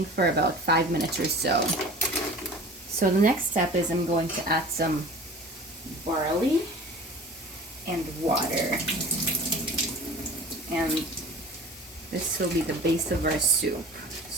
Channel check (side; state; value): both; normal; correlation 0.41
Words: for about 5 minutes or so. So the next step is I'm going to add some barley and water. And this will be the base of our soup.